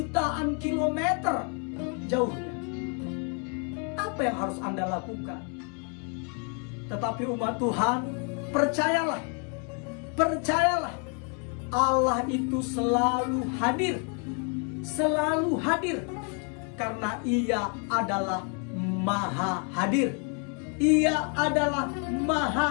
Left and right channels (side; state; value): right; quieter; 38.9 dB